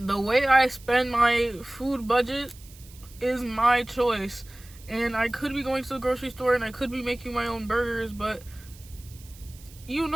way I spend my food budget is my choice. And I could be going to the grocery store and I could be making my own burgers, but you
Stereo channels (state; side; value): noise; right; hiss, 22 dB below the sound